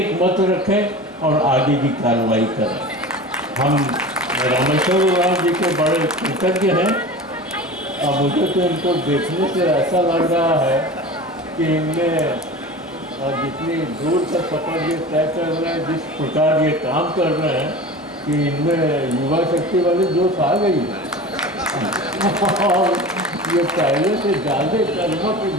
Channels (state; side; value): normal; both; correlation 0.35